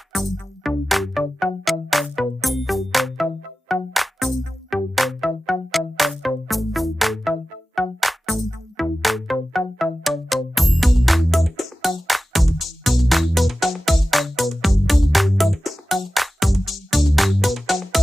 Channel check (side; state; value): both; normal; correlation 0.95